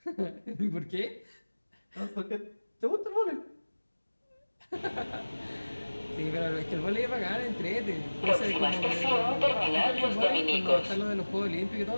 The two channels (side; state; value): both; inverted; correlation -1.00